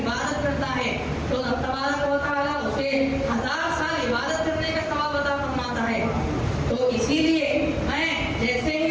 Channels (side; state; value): both; identical; correlation 1.00